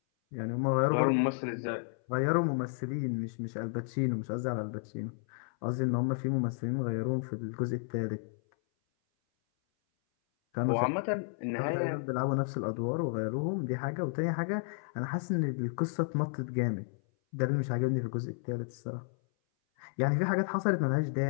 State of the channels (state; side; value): silent; right; 56 dB below the other